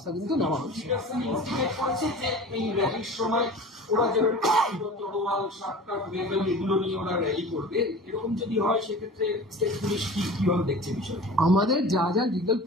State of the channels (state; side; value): normal; both; correlation 0.38